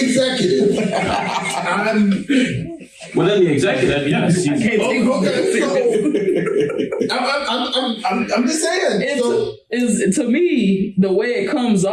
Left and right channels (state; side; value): identical; both; correlation 1.00